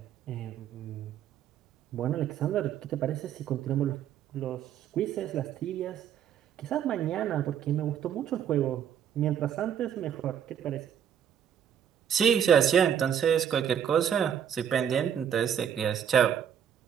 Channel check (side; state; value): left; quieter; 8.9 dB